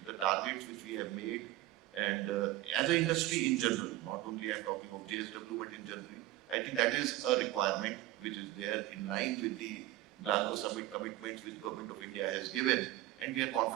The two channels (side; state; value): left; quieter; 16.2 dB